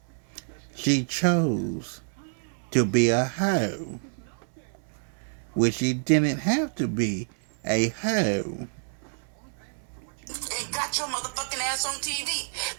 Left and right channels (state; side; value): silent; left; 57 dB below the other